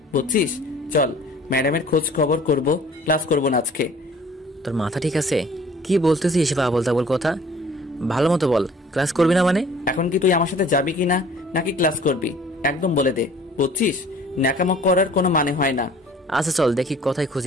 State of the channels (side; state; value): both; normal; correlation 0.51